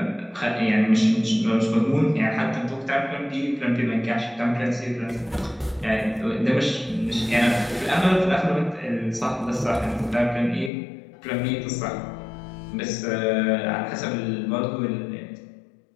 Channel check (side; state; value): right; drops out; at 10.7 s